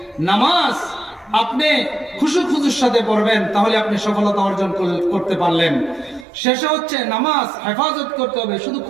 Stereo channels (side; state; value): left; drops out; at 6.2 s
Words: নামাজ আপনি খুশুর সাথে পড়বেন, তাহলে আপনি সফলতা অর্জন করতে পারলেন। শেষে হচ্ছে নামাজ হেফাজত করতে হবে, শুধু